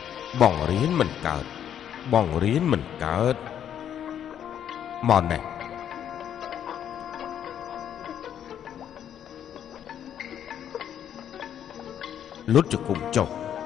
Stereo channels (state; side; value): quieter; right; 9.6 dB